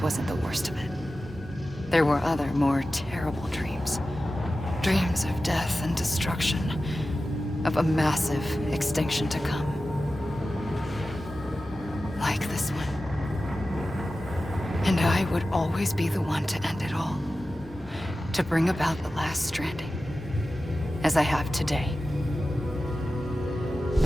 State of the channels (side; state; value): both; normal; correlation 0.94